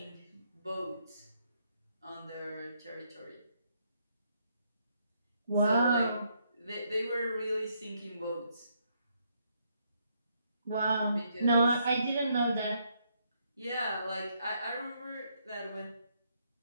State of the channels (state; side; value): inverted; both; correlation -0.74